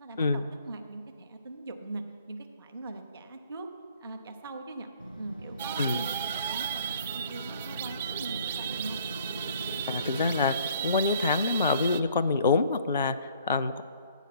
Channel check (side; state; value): both; inverted; correlation -0.58